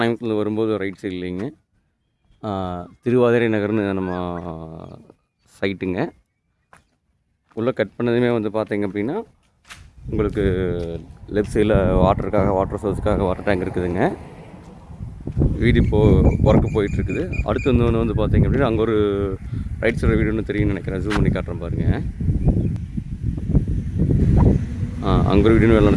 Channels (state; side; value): identical; both; correlation 1.00